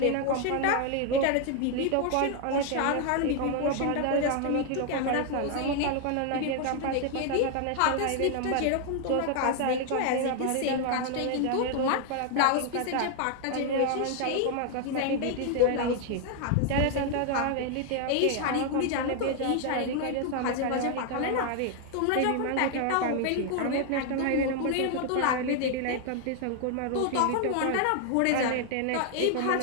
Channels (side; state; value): both; different; correlation 0.00